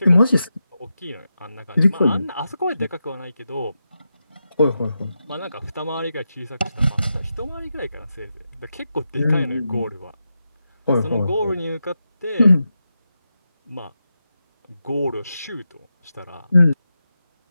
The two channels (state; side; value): inverted; both; correlation -0.89